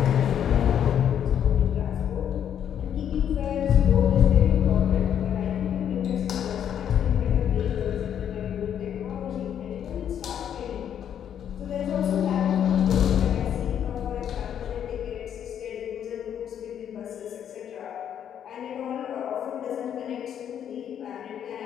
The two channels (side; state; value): right; quieter; 9.2 dB